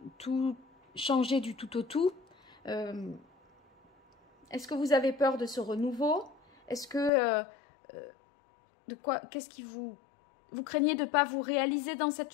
tout changer du tout au tout. Est-ce que vous avez peur de ce renouveau? Est-ce que qu'est-ce qui vous craignez de ne pas vous réaliser dans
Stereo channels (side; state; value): right; drops out; at 7.1 s